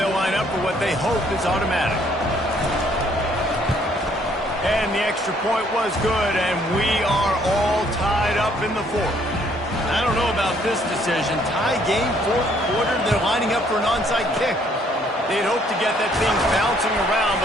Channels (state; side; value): normal; both; correlation 0.65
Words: line up for what they hope is automatic. And the extra point was good, and we are all tied up in the fourth. I don't know about this decision. Tie game, fourth quarter, they're lining up for an onside kick. They'd hope to get that thing bouncing around,